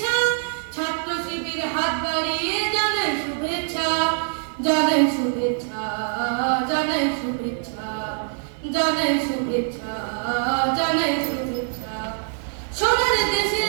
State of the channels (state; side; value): silent; left; digital silence